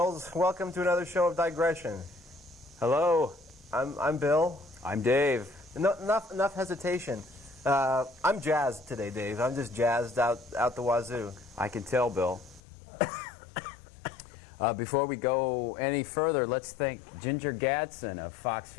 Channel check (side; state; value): right; drops out; at 12.6 s